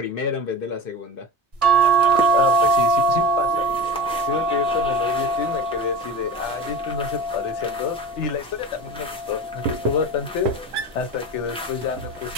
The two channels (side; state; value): both; normal; correlation 0.32